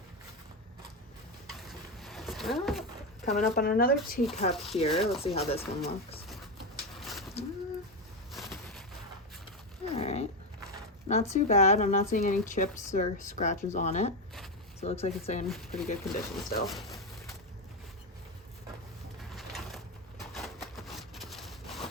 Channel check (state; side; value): normal; both; correlation 0.12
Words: Coming up on another teacup here. Let's see how this one looks. All right. Not too bad. I'm not seeing any chips or scratches on it. So it looks like it's in pretty good condition still.